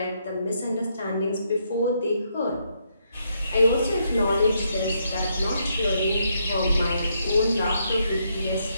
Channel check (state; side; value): inverted; both; correlation -0.76